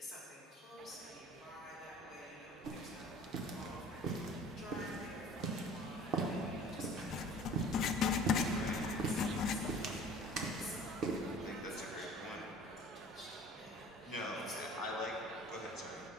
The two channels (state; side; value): normal; both; correlation 0.46